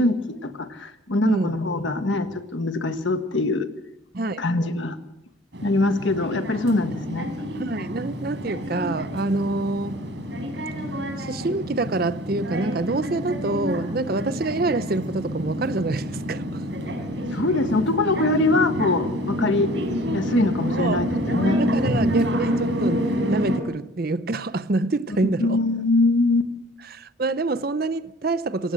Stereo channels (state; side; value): normal; both; correlation 0.48